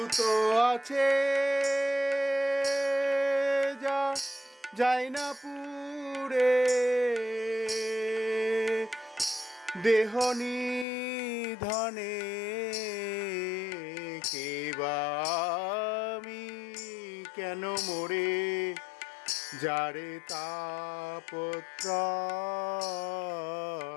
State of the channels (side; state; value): right; drops out; at 10.9 s